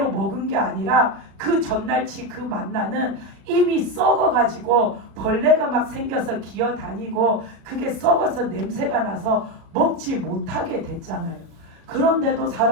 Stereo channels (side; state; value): left; late; 36 ms